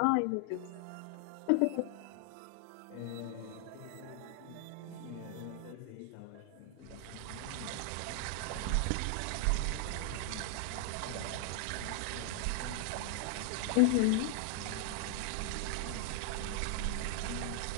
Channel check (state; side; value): different; both; correlation 0.00